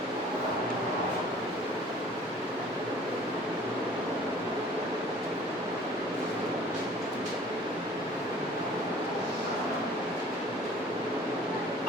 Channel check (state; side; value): normal; both; correlation 0.50